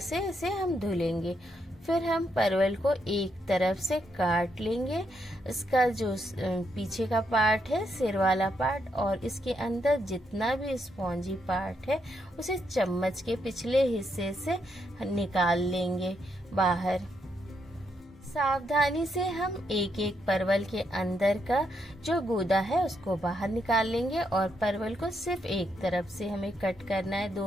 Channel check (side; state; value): both; normal; correlation 0.78